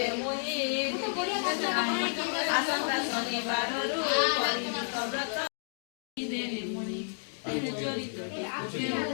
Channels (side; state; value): right; silent; 57 dB below the other